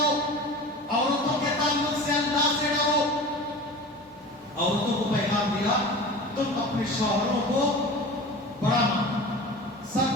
عورتوں کے تعلق سے اللہ سے ڈرو۔ عورتوں کو پیغام دیا تم اپنے شوہروں کو بڑا مانو،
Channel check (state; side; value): normal; both; correlation 0.35